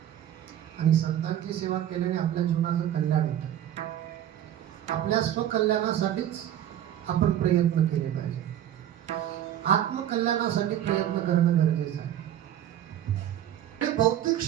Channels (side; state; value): left; quieter; 11.2 dB